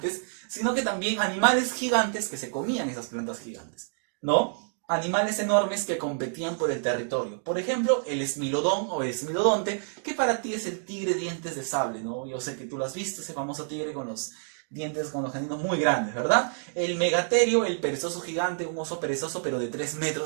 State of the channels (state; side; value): silent; left; digital silence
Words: sino que también animales gigantes que se comían esas plantas gigantes, ¿no? Animales enormes que competían por el territorio. Por ejemplo, el esmilodón o el esmilodonte, que para ti es el tigre dientes de sable, ¿no? Yo sé que tú lo has visto, ese famoso tigre con los dientes con los caninos muy grandes, ¿verdad? El megaterio, el perezoso gigante, un oso perezoso pero de 3